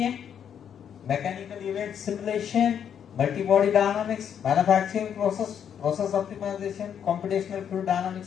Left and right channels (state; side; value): quieter; right; 8.5 dB